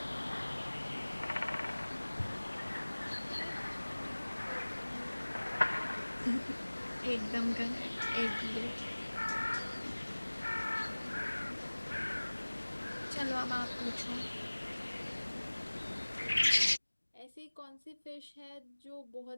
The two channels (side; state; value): both; inverted; correlation -1.00